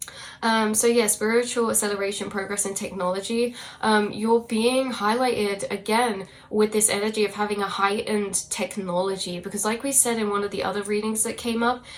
So yeah, spiritual acceleration, progress and technology. You're being highlighted again with this energy of having a heightened technology, because like we said in one of the other readings that came up,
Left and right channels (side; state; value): both; identical; correlation 1.00